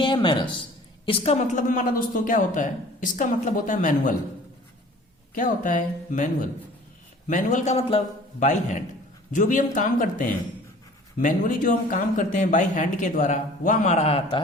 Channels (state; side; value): normal; both; correlation 0.48